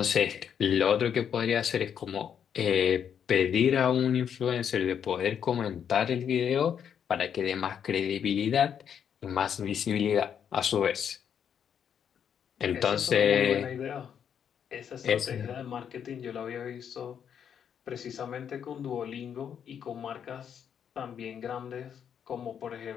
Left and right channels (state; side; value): quieter; right; 8.2 dB